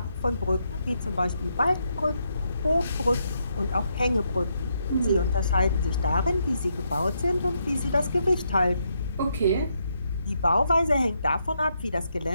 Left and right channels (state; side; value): inverted; both; correlation -0.78